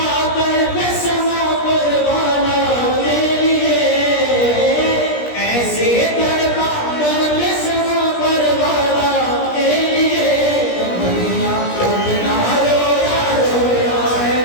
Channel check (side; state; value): right; late; 17 ms